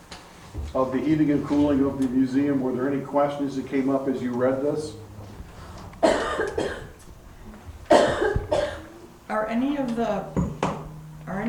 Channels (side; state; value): both; identical; correlation 1.00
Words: of the heating and cooling of the museum? Were there any questions that came up as you read this? Are any